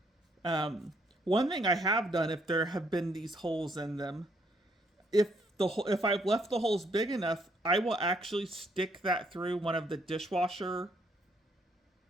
One thing I have done, if there have been these holes in them, if I've left the holes big enough, I will actually stick that through one of the dishwasher,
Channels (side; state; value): both; normal; correlation 0.70